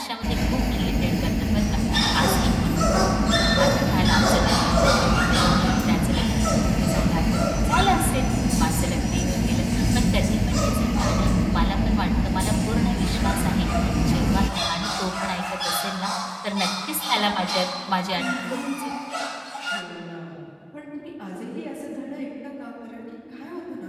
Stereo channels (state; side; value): identical; both; correlation 1.00